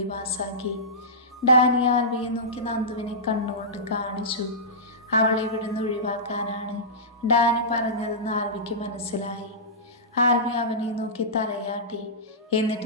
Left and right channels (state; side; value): normal; both; correlation -0.18